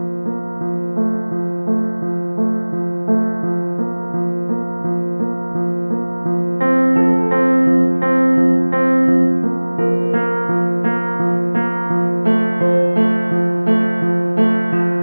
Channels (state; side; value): inverted; both; correlation -1.00